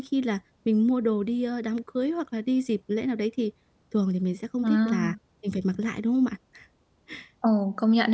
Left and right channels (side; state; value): both; identical; correlation 1.00